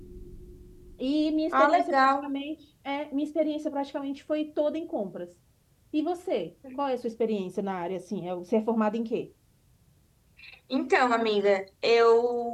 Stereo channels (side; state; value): both; identical; correlation 1.00